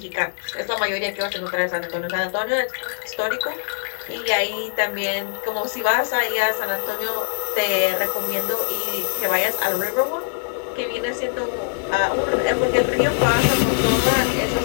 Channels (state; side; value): silent; right; digital silence